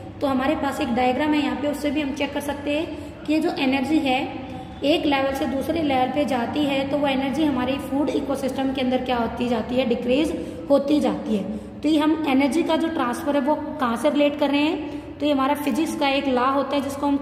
तो हमारे पास एक डायग्राम है यहाँ पे, उससे भी हम चेक कर सकते हैं कि ये जो एनर्जी है एक लेवल से दूसरे लेवल पे जाती है तो वो एनर्जी हमारी फूड इकोसिस्टम के अंदर क्या होती जाती है, डिक्रीज होती जाती है। तो ये हम एनर्जी का जो ट्रांसफर है वो कहाँ से रिलेट कर रहे हैं, तो ये हमारा फिजिक्स का एक लॉ होता है जिसको हम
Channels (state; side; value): identical; both; correlation 1.00